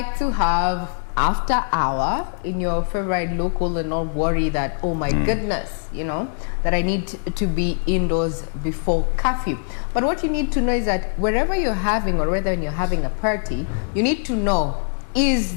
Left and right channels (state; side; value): silent; right; 60 dB below the other